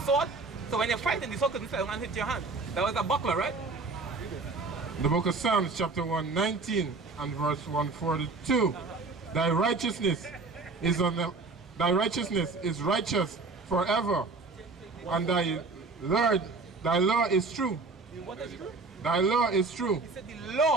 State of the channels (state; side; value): quieter; left; 3.9 dB